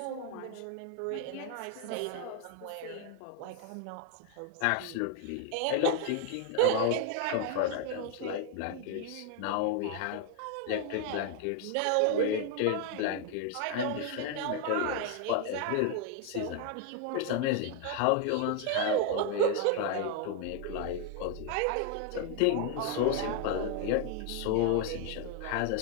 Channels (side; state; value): both; different; correlation 0.01